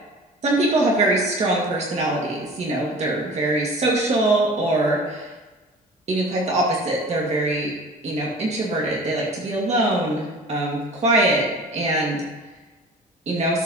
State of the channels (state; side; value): normal; both; correlation 0.42